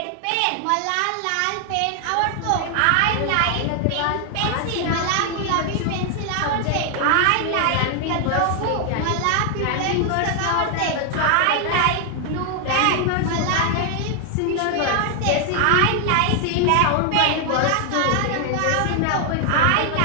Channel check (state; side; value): different; both; correlation 0.00